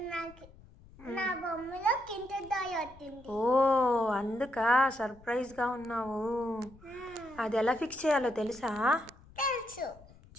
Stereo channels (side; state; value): left; noise; rumble, 23 dB below the sound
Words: నాకు నా బొమ్మలో కింటర్ టాయ్ వచ్చింది. ఓ అందుకా సర్ప్రైజ్గా ఉన్నావు. అది ఎలా ఫిక్స్ చేయాలో తెలుసా? తెలుసు.